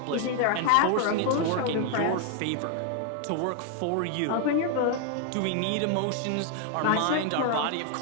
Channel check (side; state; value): both; different; correlation 0.00